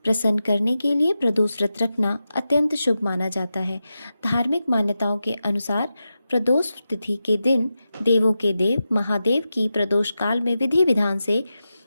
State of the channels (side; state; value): both; inverted; correlation -0.91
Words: प्रसन्न करने के लिए प्रदोष व्रत रखना अत्यंत शुभ माना जाता है। धार्मिक मान्यताओं के अनुसार प्रदोष तिथि के दिन देवों के देव महादेव की प्रदोष काल में विधि विधान से